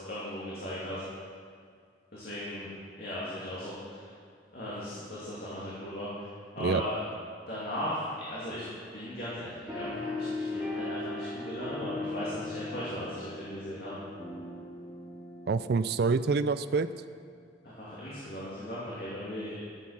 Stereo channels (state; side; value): normal; both; correlation 0.36